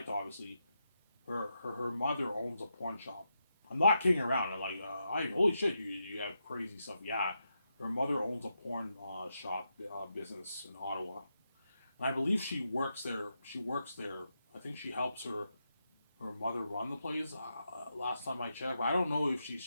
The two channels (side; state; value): both; inverted; correlation -0.85